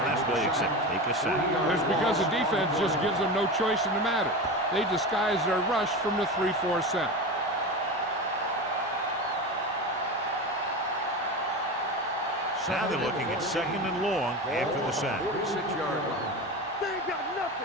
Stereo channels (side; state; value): both; normal; correlation 0.25